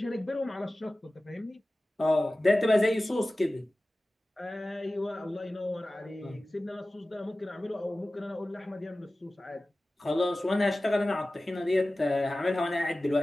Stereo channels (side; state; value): both; normal; correlation 0.96